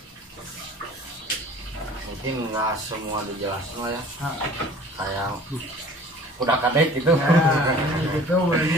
Mungkin nggak semua dijelasin lah ya. Kayak udah kadek gitu. Gitu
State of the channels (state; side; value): normal; both; correlation 0.47